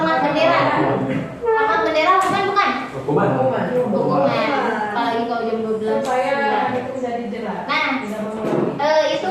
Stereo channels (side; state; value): both; identical; correlation 1.00